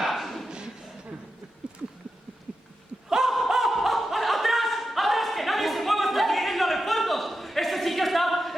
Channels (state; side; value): normal; both; correlation 0.90